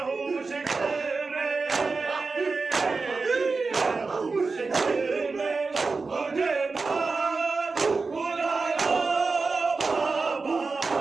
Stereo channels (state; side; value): quieter; left; 4.2 dB